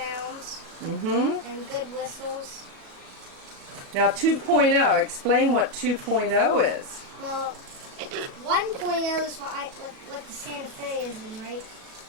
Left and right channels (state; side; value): late; left; 37 ms